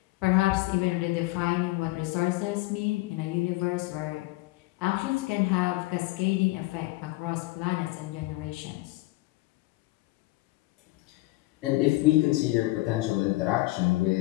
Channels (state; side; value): quieter; right; 20.6 dB